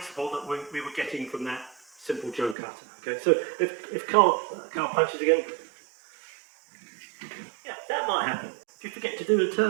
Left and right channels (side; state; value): left; drops out; at 2.6 s